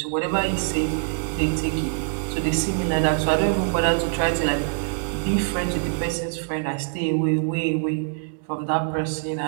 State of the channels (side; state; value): left; silent; 63 dB below the other